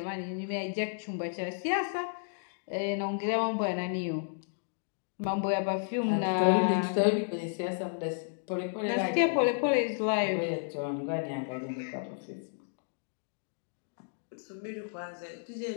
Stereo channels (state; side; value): silent; right; digital silence